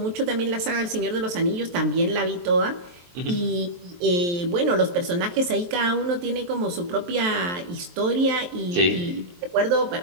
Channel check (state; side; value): late; left; 23 ms